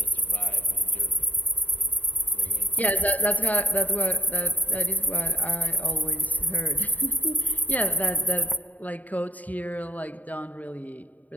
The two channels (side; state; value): right; late; 0.076 ms